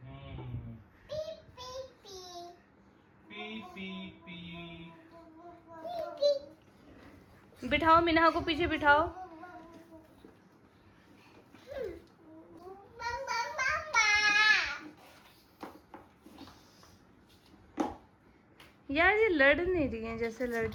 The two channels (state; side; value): identical; both; correlation 1.00